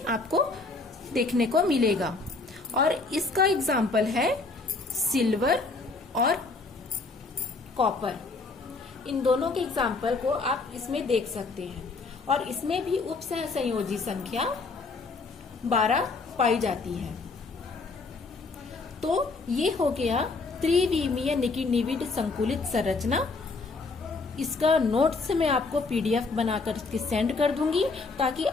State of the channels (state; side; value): quieter; right; 3.8 dB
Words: आपको देखने को मिलेगा। और इसका एग्जाम्पल है सिल्वर और कॉपर। इन दोनों के एग्जाम्पल को आप इसमें देख सकते हैं। और इसमें भी उपसह संयोजी संख्या 12 पाई जाती है। तो ये हो गया त्रिविमीय निविड संकुलित संरचना। इसका नोट्स मैं आपको PDF बनाकर के सेंड कर दूंगी ताकि